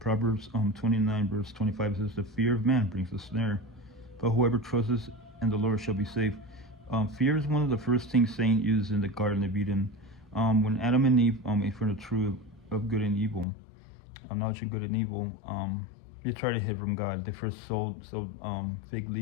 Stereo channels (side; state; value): right; drops out; at 13.5 s